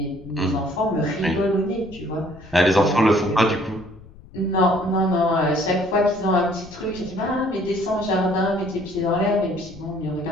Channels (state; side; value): noise; left; rumble, 20 dB below the sound